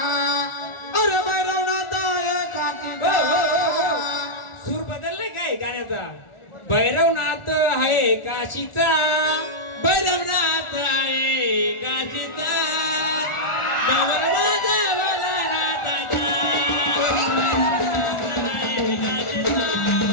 अरे भैरवनाथ एकाचीचा. सूर बदललाय काय गाण्याचा. भैरवनाथ आहे काशीचा, भैरवनाथ आहे काशीचा.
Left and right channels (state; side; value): late; right; 1.4 ms